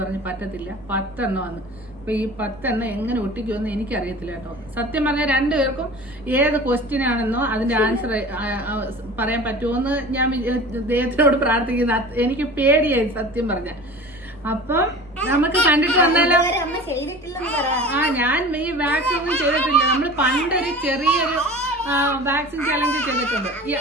പറഞ്ഞു പറ്റത്തില്ല, 10 എണ്ണം വന്ന്. അപ്പൊ ഈ 10 എണ്ണം എങ്ങനെ ഒട്ടിക്കുമെന്ന് എനിക്കറിയത്തില്ല കേട്ടോ. സത്യം പറഞ്ഞാൽ 2 പേർക്കും ഏത് ക്വസ്റ്റ്യൻ ആണെന്നോ അതിന്റെ ആൻസർ പറയാൻ പറ്റുമോന്ന് ഞാൻ ദൈവത്തിനോട് പ്രാർത്ഥിക്കുന്ന. എനിക്ക് പേടിയായി സത്യം പറഞ്ഞ. അപ്പം നമുക്ക് കണ്ടിട്ട് വന്നാലോ? ഞാൻ ഈ വാക്സിൻ ഒന്നും ചെയ്തിട്ടില്ല. നമ്മൾ പണ്ടൊരു ചെറിയൊരു വാക്സിൻ ചലഞ്ച് ചെയ്തിട്ടുണ്ട്.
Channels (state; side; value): noise; right; hum, 27 dB below the sound